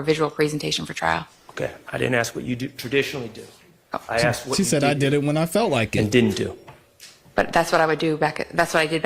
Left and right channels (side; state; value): both; identical; correlation 1.00